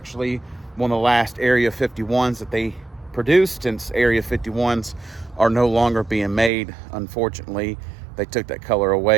one of the last Area 51s that they produced, since Area 51s are no longer being made, unfortunately. They took that color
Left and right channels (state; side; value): drops out; left; at 6.5 s